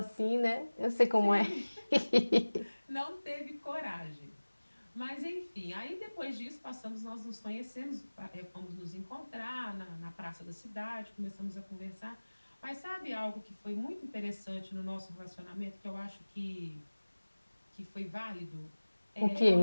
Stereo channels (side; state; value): both; inverted; correlation -1.00